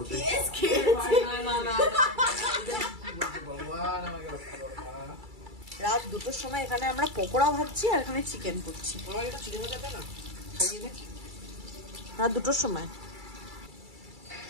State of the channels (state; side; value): late; left; 2.3 ms